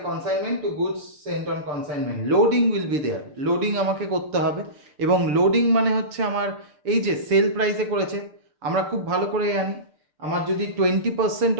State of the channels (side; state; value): left; late; 6.7 ms